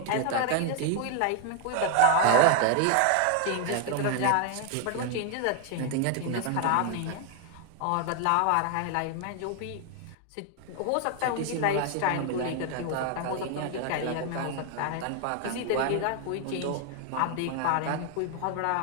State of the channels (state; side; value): different; both; correlation 0.00